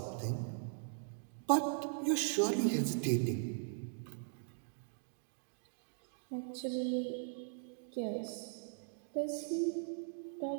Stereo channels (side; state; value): left; silent; digital silence